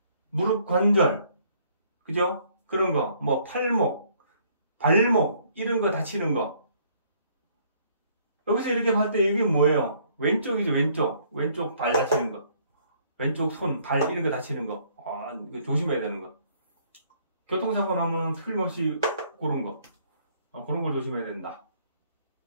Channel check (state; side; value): inverted; both; correlation -0.63